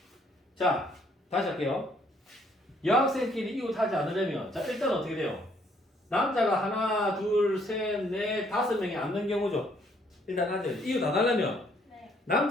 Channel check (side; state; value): both; normal; correlation 0.66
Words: 자, 다시 할게요. 여학생끼리 이웃하지 않으려면 자 일단 어떻게 돼요? 남자가 하나, 둘, 셋, 넷, 5명이 앉는 경우죠. 일단 앉아요. 이웃 안 하려면 네.